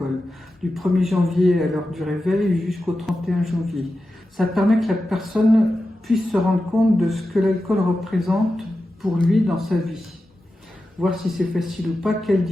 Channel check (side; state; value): both; normal; correlation 0.92